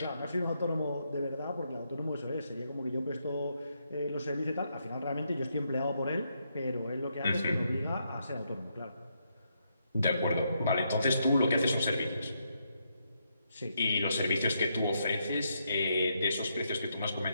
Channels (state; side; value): inverted; both; correlation -0.79